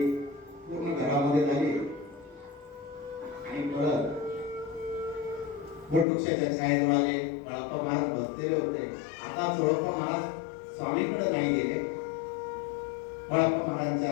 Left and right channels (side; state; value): right; drops out; at 6.1 s